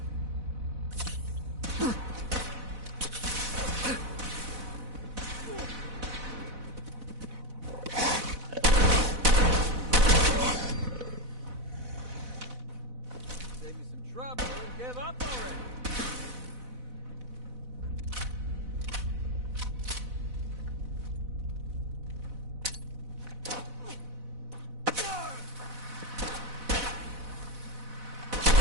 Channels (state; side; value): late; left; 4.0 ms